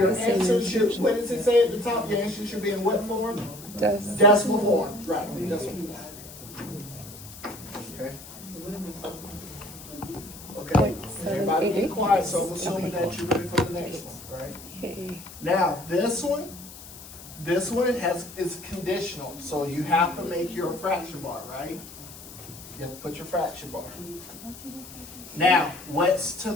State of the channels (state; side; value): noise; left; hiss, 16 dB below the sound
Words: your the same answer should, answer. what does it say at the top? Your answer should be in what form? Does Decimal form. Right, decimal form. Okay. Okay. Everybody be 0.788? quiet, so I'm assuming that you're ready for the next one, right? Hey. Now, this one is conditional, so you have to make your fraction bar, right? You have to put your fraction bar. Now, what's to